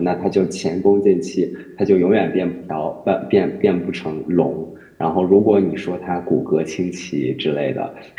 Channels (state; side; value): identical; both; correlation 1.00